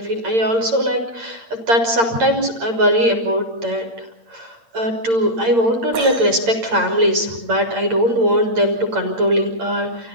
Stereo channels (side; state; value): left; late; 8.8 ms